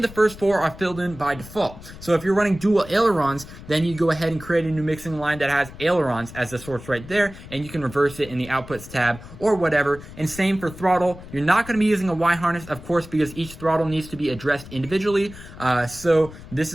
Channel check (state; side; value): noise; left; rumble, 16 dB below the sound